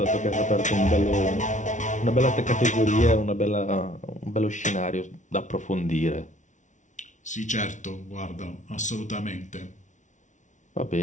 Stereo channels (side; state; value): right; late; 0.36 ms